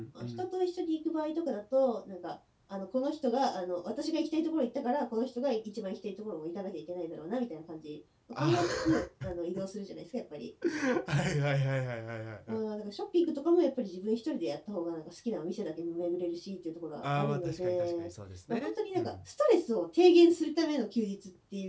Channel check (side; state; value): both; identical; correlation 1.00